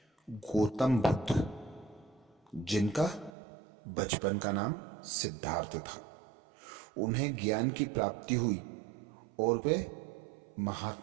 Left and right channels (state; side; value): drops out; left; at 3.3 s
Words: गौतम बुद्ध, जिनका बचपन का नाम सिद्धार्थ था, उन्हें ज्ञान की प्राप्ति हुई और वे